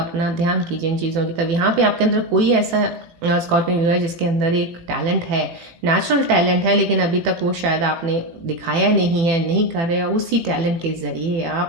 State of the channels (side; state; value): left; late; 18 ms